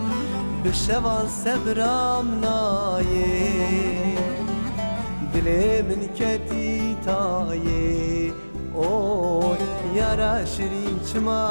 Bişevan sebramnaye Dile min keti taye Oy yara şirin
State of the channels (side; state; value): both; inverted; correlation -1.00